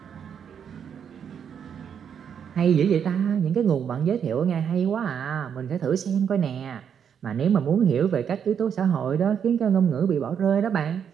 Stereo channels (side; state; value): left; quieter; 7.9 dB